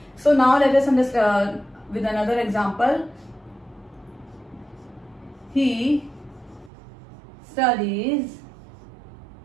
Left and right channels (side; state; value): left; drops out; at 6.7 s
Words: so now let us understand with another example. He studies